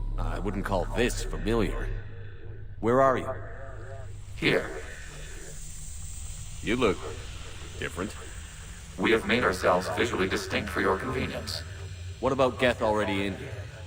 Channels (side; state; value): both; identical; correlation 1.00